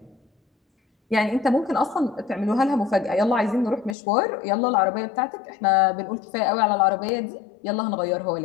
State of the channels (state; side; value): drops out; right; at 4.0 s